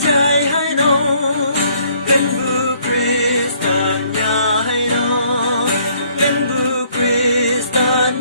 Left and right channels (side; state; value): both; inverted; correlation -0.64